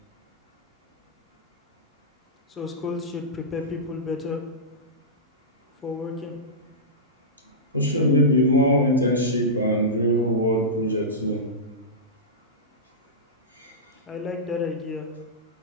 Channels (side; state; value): both; normal; correlation -0.14